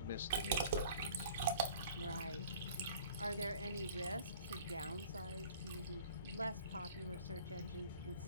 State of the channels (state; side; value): inverted; both; correlation -0.49